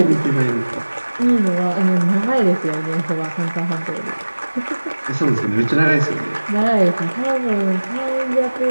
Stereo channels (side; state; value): both; inverted; correlation -1.00